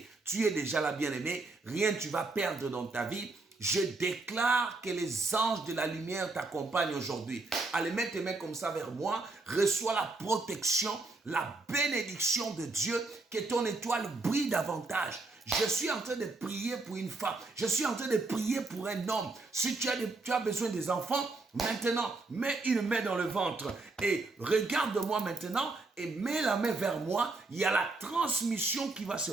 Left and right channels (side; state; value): left; quieter; 3.5 dB